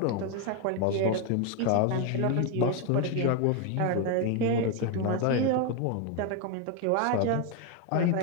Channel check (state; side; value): different; both; correlation 0.01